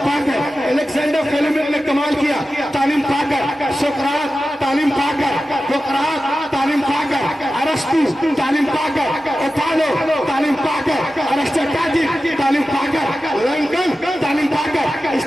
پا کر، الیگزینڈر فلیمنگ نے کمال کیا تعلیم پا کر، سقراط تعلیم پا کر، سقراط تعلیم پا کر، ارسطو تعلیم پا کر، اوتالو تعلیم پا کر، ارسطاٹل تعلیم پا کر، لنکن تعلیم پا کر،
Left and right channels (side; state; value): both; normal; correlation 0.93